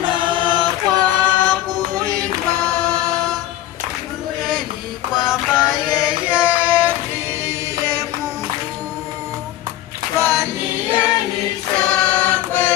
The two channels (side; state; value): right; quieter; 14.0 dB